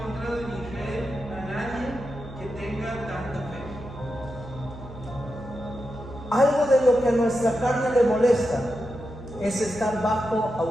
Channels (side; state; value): right; noise; hum, 13 dB below the sound